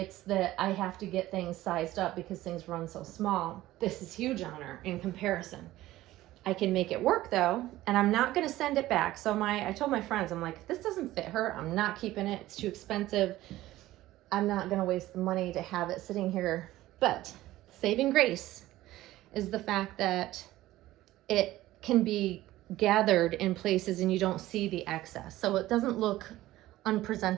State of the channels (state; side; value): quieter; left; 15.9 dB